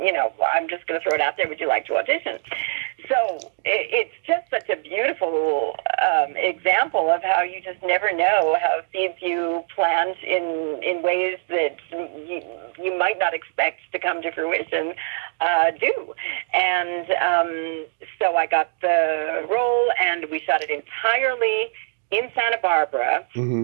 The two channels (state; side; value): silent; left; digital silence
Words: I'm just going to throw it out there, would you like to audition? So it's just such a beautiful example of how you just never know how seeds you plant in ways that you might not expect to come to fruition do. And so I got the role, and we shot it entirely in Santa Barbara